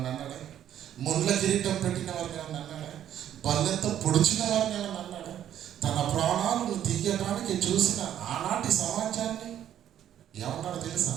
అన్నాడా? ముళ్ళ కిరీటం పెట్టిన వారిని ఏమన్నా అన్నాడా? బల్లెంతో పొడిచిన వారిని ఏమన్నా అన్నాడా? తన ప్రాణాలను తీయడానికి చూసిన ఆనాటి సమాజాన్ని ఏమన్నాడు తెలుసా?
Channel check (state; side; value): quieter; left; 10.7 dB